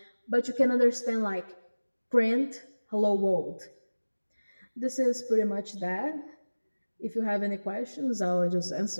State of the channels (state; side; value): inverted; both; correlation -1.00